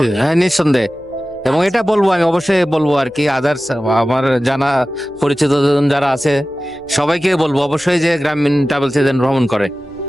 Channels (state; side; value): noise; left; hum, 29 dB below the sound